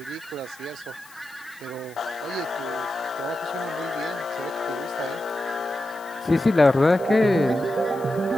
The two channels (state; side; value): noise; left; hiss, 23 dB below the sound